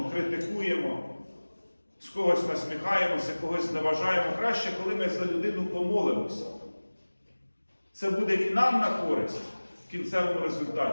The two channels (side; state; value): both; inverted; correlation -1.00